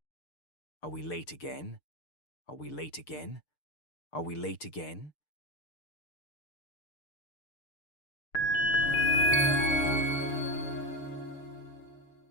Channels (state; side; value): late; right; 6.7 ms